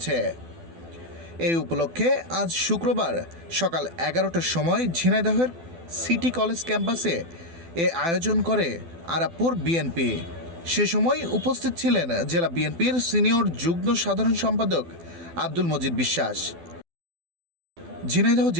এই উপলক্ষে আজ শুক্রবার সকাল ১১টার সময় ঝিনাইদহের সিটি কলেজ ক্যাম্পাসে এ আয়োজন করে আরাপপুর বিএনপি। সে সময় উপস্থিত ছিলেন জেলা বিএনপির সিনিয়র যুগ্ম সাধারণ সম্পাদক আব্দুল মজিদ বিশ্বাস, ঝিনাইদহ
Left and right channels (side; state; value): left; late; 12 ms